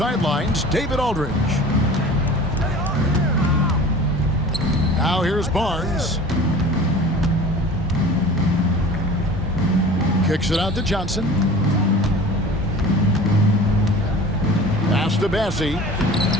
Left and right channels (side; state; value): both; normal; correlation 0.41